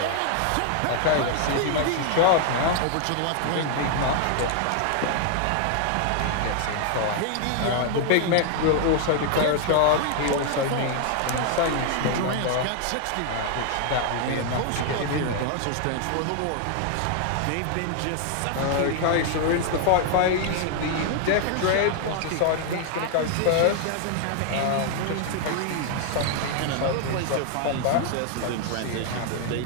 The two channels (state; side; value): different; both; correlation 0.00